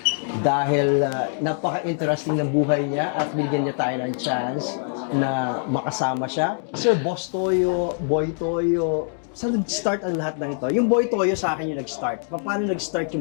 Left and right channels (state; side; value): silent; right; 63 dB below the other